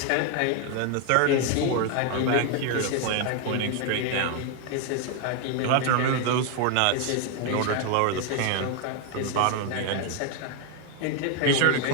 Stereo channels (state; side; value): different; both; correlation 0.01